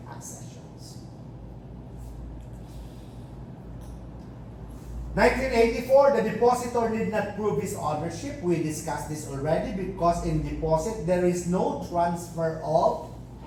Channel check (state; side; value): identical; both; correlation 1.00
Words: accessions. 1984, the depositor did not prove his ownership. We discussed this already because in deposit, there is no transfer of